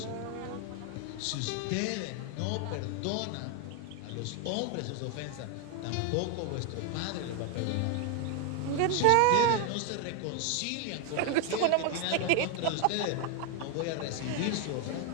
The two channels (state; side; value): different; both; correlation 0.01